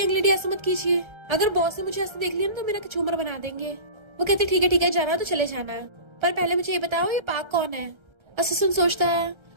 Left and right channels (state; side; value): late; left; 1.3 ms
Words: लेडी ऐसा मत कीजिए, अगर बॉस ने मुझे ऐसे देख लिया ना तो मेरा झूमर बना देंगे। वो कहते ठीक है जाना तो चले जाना, पर पहले मुझे ये बताओ ये पाक कौन है? असिस्टेंट सोचता है